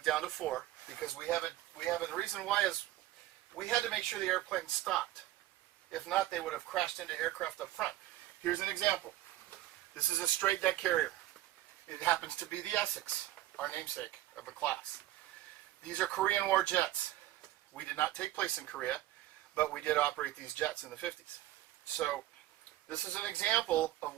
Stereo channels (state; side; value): quieter; left; 15.1 dB